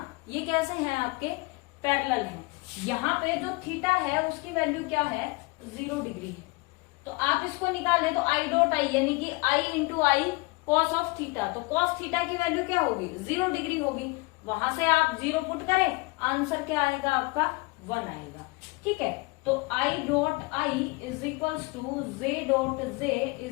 ये कैसे हैं, आपके पैरेलल हैं। यहाँ पे जो थीटा है उसकी वैल्यू क्या है, 0 डिग्री है। तो आप इसको निकालें तो आई डॉट आई यानी कि i into i cos of theta, तो कॉस थीटा की वैल्यू क्या होगी, 0 डिग्री होगी। वहां से आप 0 पुट करें, आंसर क्या आएगा आपका 1 आएगा। ठीक है, तो I dot I is equals to J dot J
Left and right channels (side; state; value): right; quieter; 26.3 dB